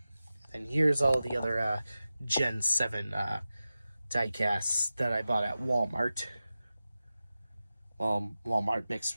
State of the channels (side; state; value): both; inverted; correlation -0.94